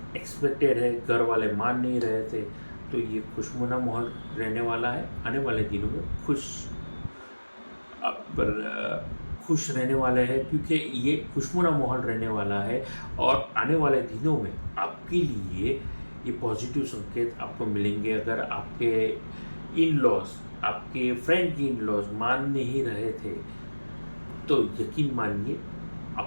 एक्सपेक्टेड है, घर वाले मान नहीं रहे थे, तो ये खुशनुमा माहौल रहने वाला है। आने वाले दिनों में खुश रहने वाले हैं, क्योंकि ये खुशनुमा माहौल रहने वाला है। और आने वाले दिनों में आपके लिए ये पॉजिटिव संकेत आपको मिलेंगे। अगर आपके इन लॉज, आपके फ्रेंड की इन लॉज मान नहीं रहे थे, तो यकीन मानिए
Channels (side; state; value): both; inverted; correlation -1.00